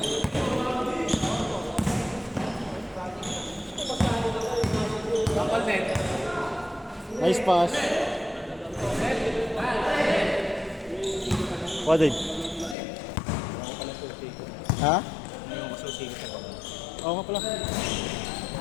Nice pass. What did? Ha? Yung associated sa baba. Oo nga pala.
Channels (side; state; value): right; drops out; at 12.8 s